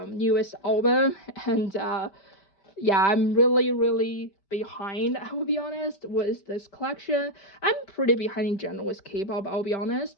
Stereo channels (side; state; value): right; late; 5.1 ms